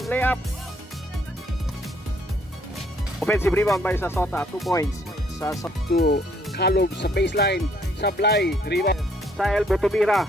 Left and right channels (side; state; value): both; normal; correlation 0.66